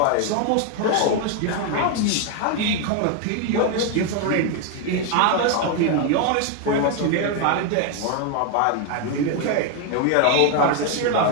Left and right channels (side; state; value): both; different; correlation 0.01